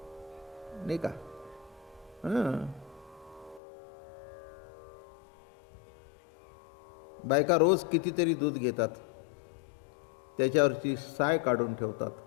नाही का? बायका रोज कितीतरी दूध घेतात, त्याच्यावरची साय काढून ठेवतात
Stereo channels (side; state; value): right; drops out; at 3.6 s